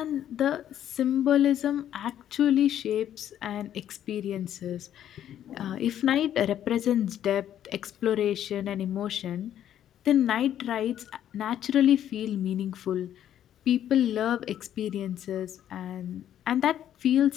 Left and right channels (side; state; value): right; quieter; 10.8 dB